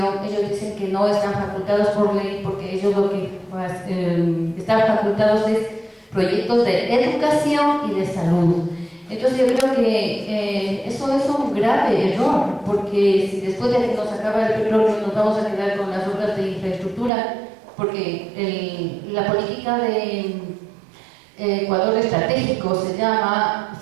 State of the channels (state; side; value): drops out; left; at 17.1 s